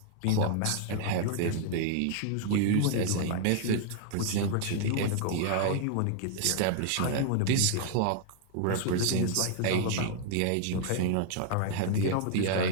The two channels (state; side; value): different; both; correlation 0.00